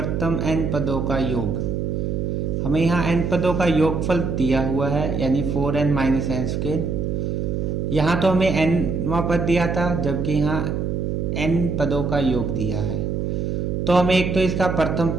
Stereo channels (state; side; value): noise; right; hum, 1 dB below the sound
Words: n पदों का योग। हमें यहाँ n पदों का योगफल दिया हुआ है, यानी 4n माइनस n स्क्वायर। यहाँ तो हमें nवां पद दिया था, जबकि यहाँ n पदों का योग दिया है। तो हमें एक तो इसका प्रथम